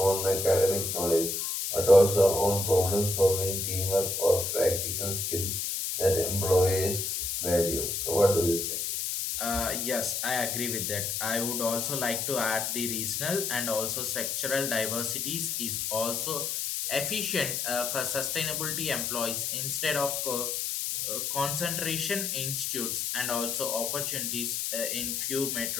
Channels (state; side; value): noise; left; hiss, 1 dB below the sound